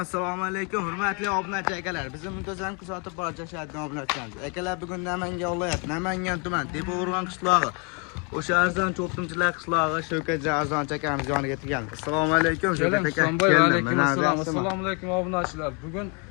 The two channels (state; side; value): quieter; right; 34.5 dB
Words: alaykum, hurmatli obunachi akalar. Bizni muntazam kuzatib borishadigan obunachilarimiz. Akalar bugun Namangan viloyat, Namangan tuman, Tepao'rg'on qishlog'i. O'sha arzon cho'qtimchilar qishlog'i Shavkat Arzon akamiz yoniga kelganmiz. Assalomu alaykum Shavkat aka. Assalomu alaykum obunachilar. Bugun